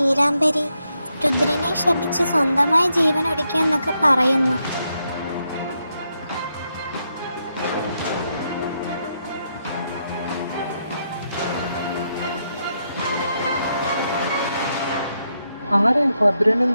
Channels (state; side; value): inverted; both; correlation -0.81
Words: രുദ്രനെ ശപിച്ച് സ്വന്തമായി ജീവൻ ഒടുക്കിയെന്നൊക്കെ പറയുന്നു. ആരായി ഭദ്രനും